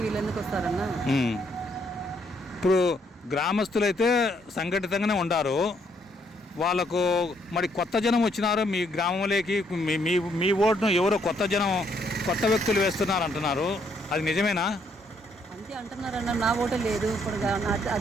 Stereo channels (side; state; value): both; normal; correlation 0.71